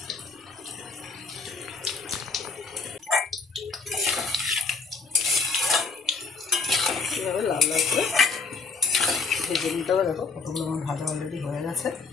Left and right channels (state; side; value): quieter; right; 4.1 dB